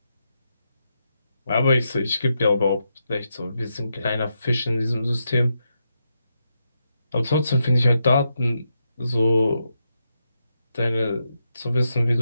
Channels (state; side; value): inverted; both; correlation -0.84